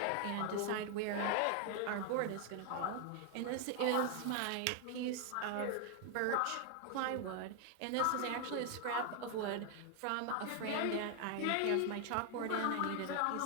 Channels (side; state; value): both; different; correlation 0.00